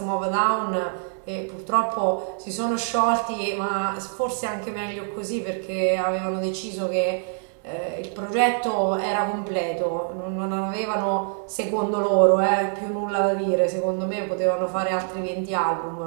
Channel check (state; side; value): silent; left; 62 dB below the other